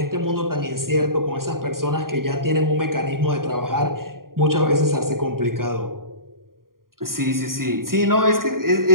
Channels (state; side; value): late; left; 0.91 ms